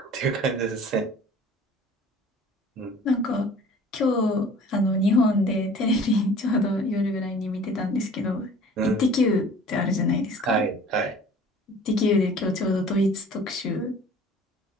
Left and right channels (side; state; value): both; normal; correlation 0.47